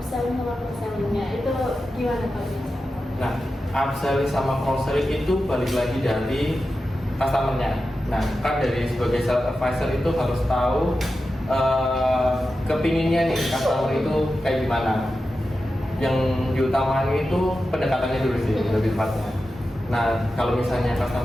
sama cross-selling-nya. Itu gimana Pak? Nah, upselling sama cross-selling itu balik lagi dari customer-nya. Nah, kan dari sebagai sales advisor itu harus tahu kepinginnya nih customer itu kayak gimana. Yang diutamakan itu pendekatannya dulu sih, lebih tepatnya. Nah, kalau misalnya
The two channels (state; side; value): normal; both; correlation 0.92